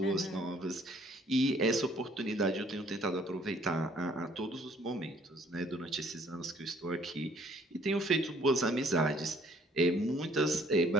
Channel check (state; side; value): normal; both; correlation 0.61